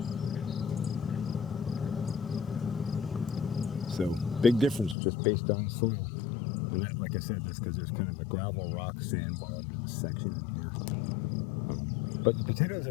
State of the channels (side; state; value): right; drops out; at 5.0 s